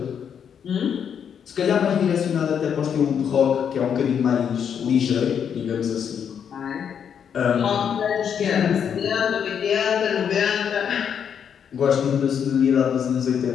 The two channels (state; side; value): quieter; right; 7.9 dB